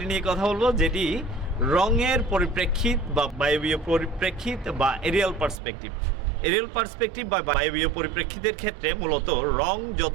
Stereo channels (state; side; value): drops out; left; at 5.6 s